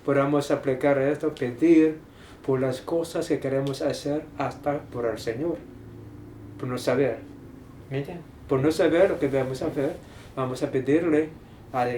podamos aplicar esto, pedir por las cosas que queremos hacer, hasta por el Señor, por no saber. ¿Me entiendes? Por no saber lo que debemos hacer, vamos a pedirle,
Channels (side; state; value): both; identical; correlation 1.00